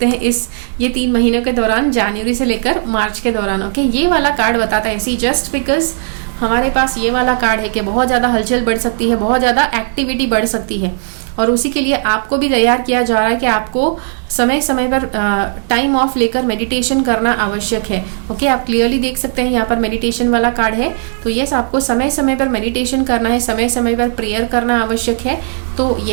हैं ये 3 महीनों के दौरान, जनवरी से लेकर मार्च के दौरान. ओके, ये वाला कार्ड बताता है इसी जस्ट बिकॉज हमारे पास ये वाला कार्ड है कि बहुत ज्यादा हलचल बढ़ सकती है, बहुत ज्यादा एक्टिविटी बढ़ सकती है. और उसी के लिए आपको भी तैयार किया जा रहा है कि आपको समय समय पर टाइम ऑफ लेकर मेडिटेशन करना आवश्यक है. ओके, आप क्लियरली देख सकते हैं यहाँ पर मेडिटेशन वाला कार्ड है. तो यस, आपको समय समय पर मेडिटेशन करना है, समय समय पर प्रेयर करना आवश्यक है. तो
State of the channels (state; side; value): silent; left; digital silence